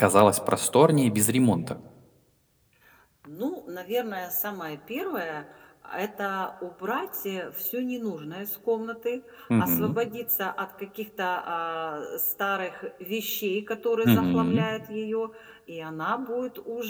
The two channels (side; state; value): both; identical; correlation 1.00